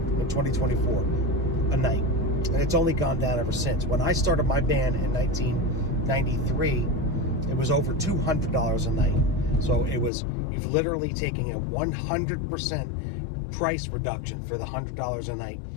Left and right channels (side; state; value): right; drops out; at 10.1 s